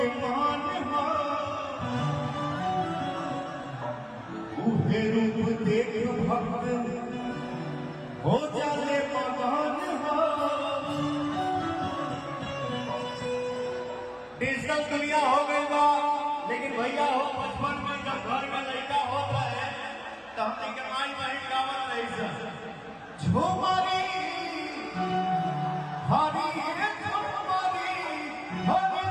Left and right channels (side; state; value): both; identical; correlation 1.00